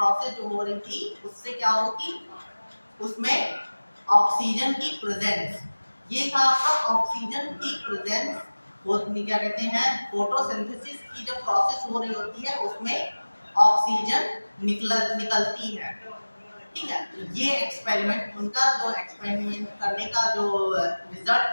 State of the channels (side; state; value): both; inverted; correlation -1.00